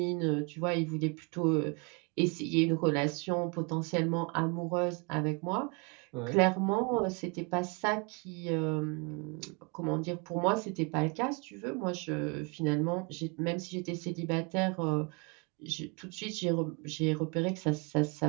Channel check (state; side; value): quieter; left; 32.4 dB